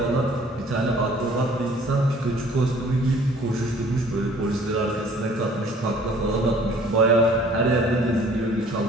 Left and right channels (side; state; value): both; normal; correlation 0.54